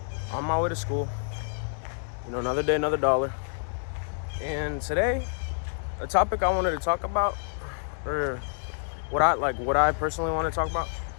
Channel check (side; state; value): right; silent; digital silence